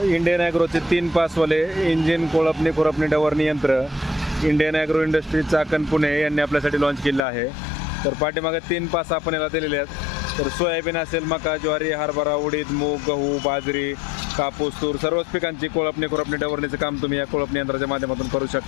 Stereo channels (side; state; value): right; drops out; at 7.2 s